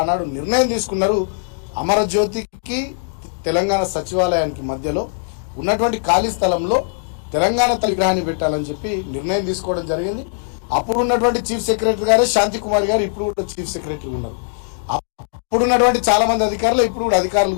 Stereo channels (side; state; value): right; silent; digital silence